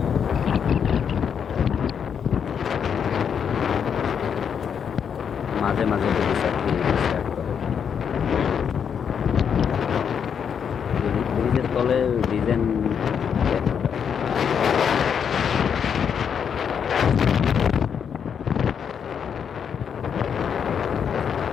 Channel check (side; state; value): right; quieter; 7.5 dB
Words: মাঝে মাঝে যদি স্টার্ট করে ব্রিজের তলে ডিজাইন